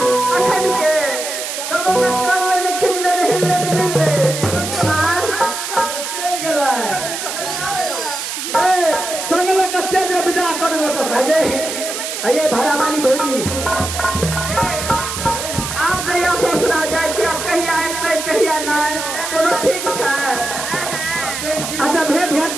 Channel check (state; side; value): noise; right; hiss, 5 dB below the sound